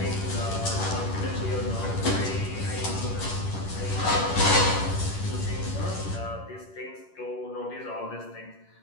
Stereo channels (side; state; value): right; late; 10 ms